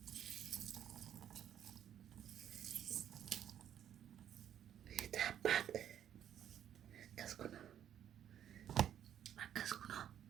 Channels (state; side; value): quieter; left; 10.1 dB